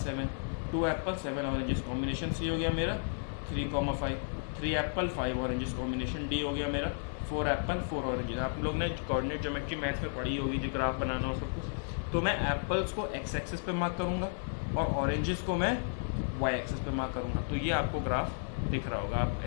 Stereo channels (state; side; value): silent; right; digital silence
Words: 2 एप्पल 7 ऑरेंजेस, कॉम्बिनेशन C हो गया मेरा 3,5, 3 एप्पल 5 ऑरेंजेस, कॉम्बिनेशन D हो गया मेरा 4 एप्पल 4 ऑरेंजेस। आप लोग ने कोऑर्डिनेट ज्योमेट्री मैथ्स में पढ़ी होगी, जो ग्राफ बनाना और सब कुछ। तो मैं एप्पल्स को x एक्सिस पे मार्क करूँगा और ऑरेंजेस को मैं y एक्सिस पे मार्क करूँगा, तो ये आपको ग्राफ दिख रहा होगा। आप